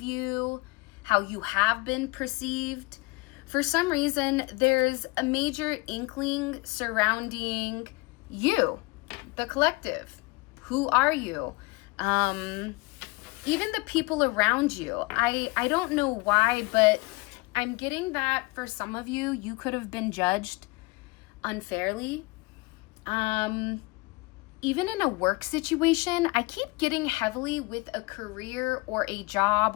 how you have been perceived. For some reason, there's a major inkling surrounding you, the collective. Who are you? Even the people around you. I don't know why, but I'm getting that for some of you, you could have been judged unfairly. Even in a work situation, I keep getting heavily with a career or a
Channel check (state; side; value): quieter; right; 25.0 dB